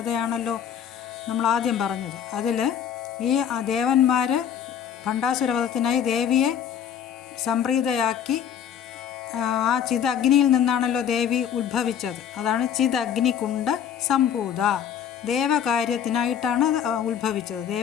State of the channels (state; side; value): quieter; right; 8.7 dB